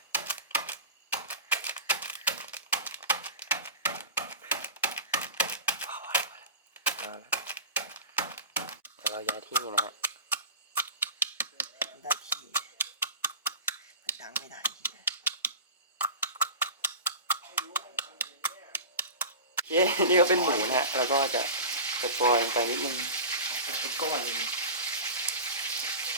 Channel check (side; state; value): both; inverted; correlation -0.31